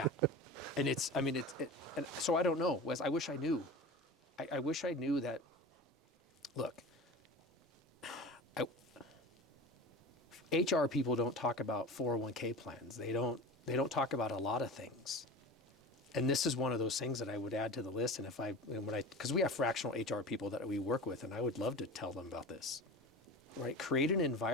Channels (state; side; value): normal; both; correlation 0.32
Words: And and so I don't know, Wes, I wish I knew. I wish I knew that, look, HR people don't talk about 401k plans. They don't talk about a lot of things. And this is one of those things that I would add to the list. And because we have fractional HR people that we work with, and I would love to tell them about this, right? Create an